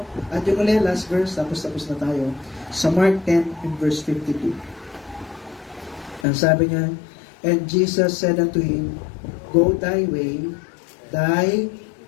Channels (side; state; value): right; drops out; at 6.2 s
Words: At yung ulit, last verse, tapos na tayo. Sa Mark 10 and verse 52. Ang sabi niya, and Jesus said unto him, go thy way, thy